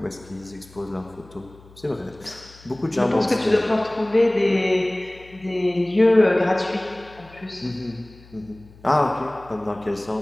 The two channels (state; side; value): noise; left; hum, 24 dB below the sound